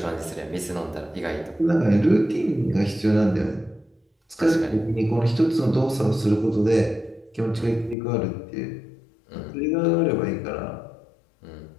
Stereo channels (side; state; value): right; drops out; at 8.0 s